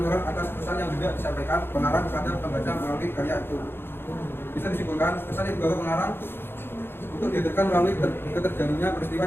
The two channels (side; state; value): right; late; 0.11 ms